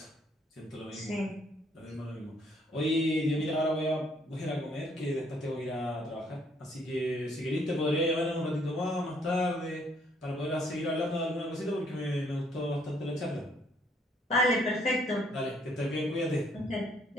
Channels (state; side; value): normal; both; correlation 0.66